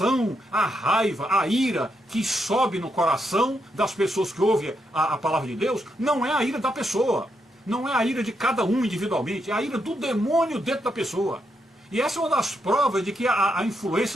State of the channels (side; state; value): both; normal; correlation 0.81